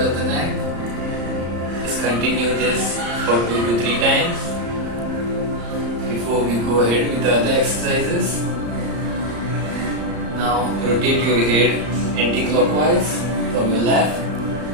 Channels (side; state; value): left; late; 34 ms